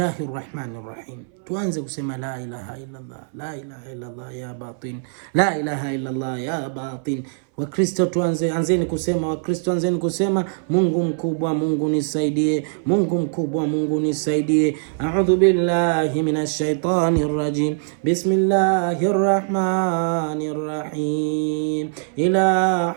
rahmanir rahim. Tuanze kusema la ilaha illa Allah, la ilaha illa Allah ya batin, la ilaha illa Allah ya batin. Wakristo anzeni kusema Mungu mkubwa, Mungu nisaidie, Mungu mkubwa, Mungu nisaidie. A'udhu billahi minash shaitani rrajim. Bismillahir rahmanir rahim. Ila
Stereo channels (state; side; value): silent; left; 60 dB below the other